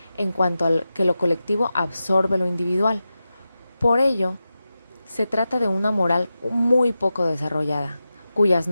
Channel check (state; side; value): inverted; both; correlation -0.92